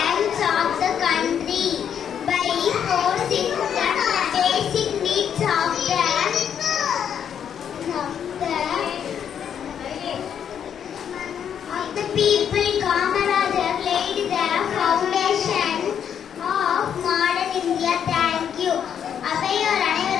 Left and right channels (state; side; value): quieter; right; 8.5 dB